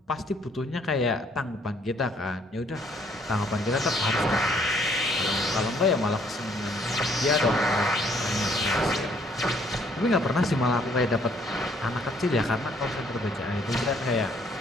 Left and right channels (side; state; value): both; normal; correlation 0.64